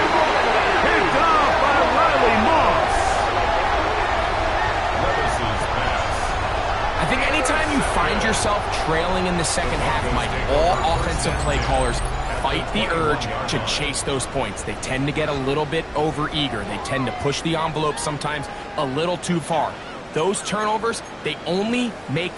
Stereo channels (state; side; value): identical; both; correlation 1.00